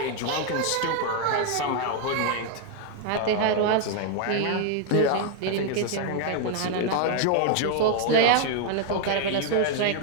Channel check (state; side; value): different; both; correlation 0.00